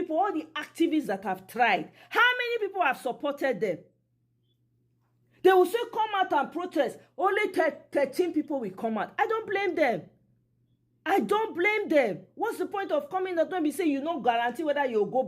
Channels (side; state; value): both; identical; correlation 1.00